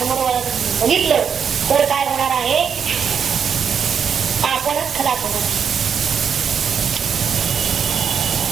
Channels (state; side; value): quieter; left; 7.2 dB